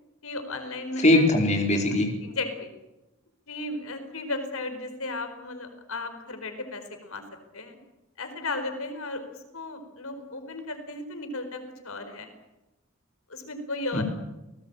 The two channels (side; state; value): both; normal; correlation 0.26